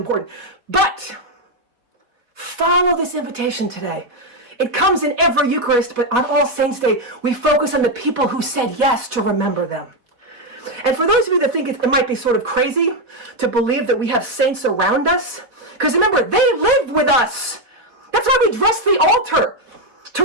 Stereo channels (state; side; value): late; left; 4.1 ms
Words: But follow this invitation today. It comes in every Eucharist, but on All Saints' Day, we focus on the people who said yes to remember them. And for those of you that think it might be sort of crazy to believe that we have saints around us, because remember, they lived with us. That's why we dress the altar, to